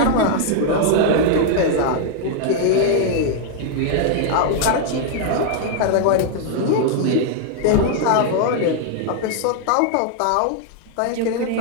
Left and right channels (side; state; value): both; different; correlation 0.00